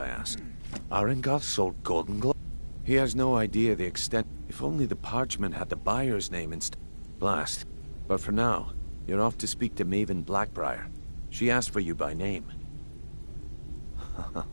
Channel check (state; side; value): inverted; both; correlation -1.00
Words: asked. Arengoth sold Golden Glow. He has no idea the extent. If only the parchment had the buyer's name instead. Blast. But for now, you're off to speak to Maven Blackbriar. She asked for you by name.